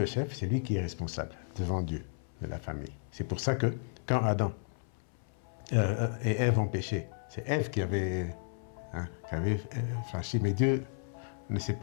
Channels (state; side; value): silent; right; 56 dB below the other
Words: chef, c'est lui qui est responsable devant Dieu de la famille. C'est pour ça que quand Adam et Ève ont péché, c'est Ève qui avait franchi, mais Dieu ne s'est